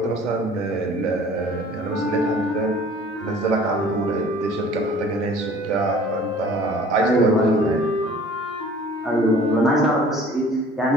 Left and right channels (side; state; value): both; normal; correlation 0.50